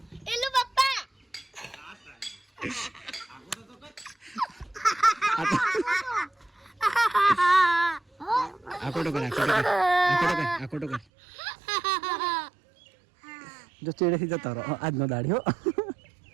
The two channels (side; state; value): left; drops out; at 11.1 s